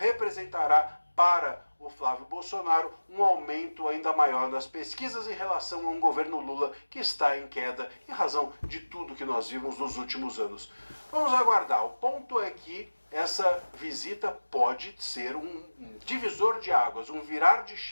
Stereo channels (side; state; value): both; inverted; correlation -1.00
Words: para o Flávio Bolsonaro um aumento ainda maior nas pesquisas em relação a um governo Lula que está em queda em razão de tudo que nós vimos nos últimos anos. Vamos aguardar. O ponto é que essa visita pode ser um divisor de águas, um virar de